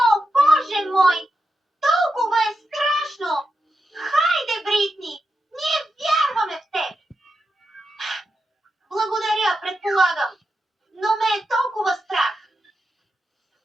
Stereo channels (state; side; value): normal; both; correlation 0.87